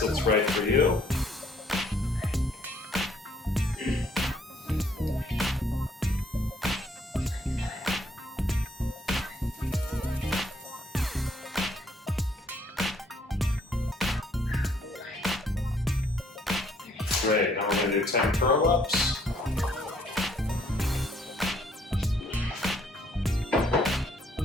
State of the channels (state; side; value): normal; both; correlation 0.65